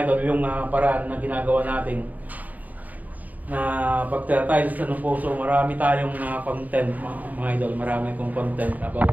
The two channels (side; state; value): left; late; 0.079 ms